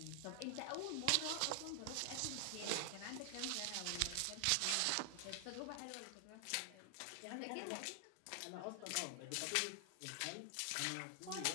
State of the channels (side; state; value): both; different; correlation 0.00